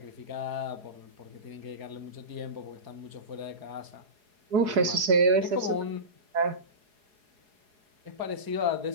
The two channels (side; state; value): left; late; 4.8 ms